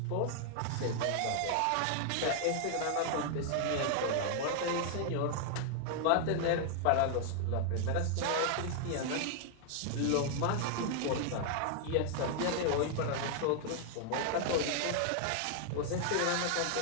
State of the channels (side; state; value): both; different; correlation 0.00